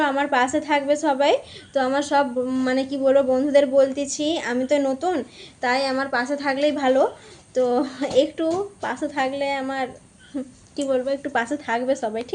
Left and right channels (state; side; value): identical; both; correlation 1.00